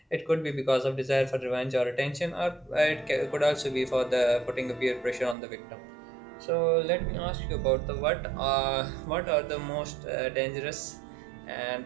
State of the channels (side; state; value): left; drops out; at 5.4 s